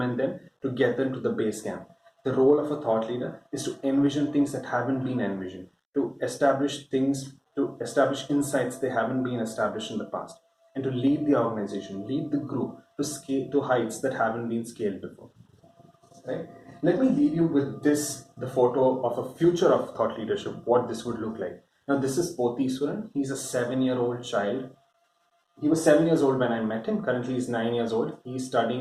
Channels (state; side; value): identical; both; correlation 1.00